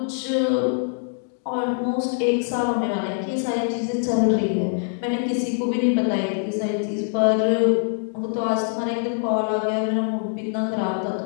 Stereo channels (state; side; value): silent; right; digital silence